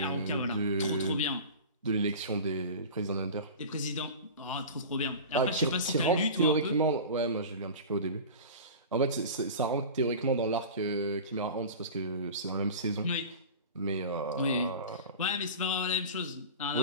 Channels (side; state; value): both; inverted; correlation -0.34